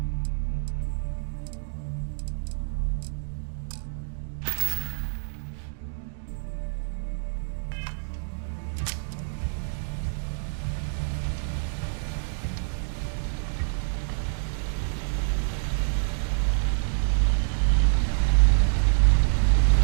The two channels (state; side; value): silent; left; digital silence